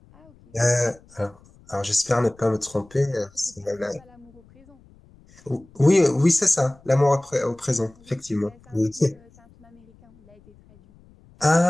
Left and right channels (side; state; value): left; noise; rumble, 27 dB below the sound